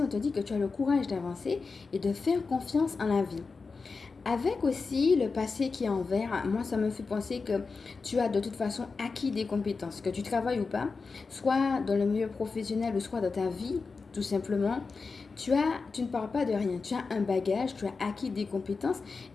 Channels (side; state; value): right; quieter; 4.5 dB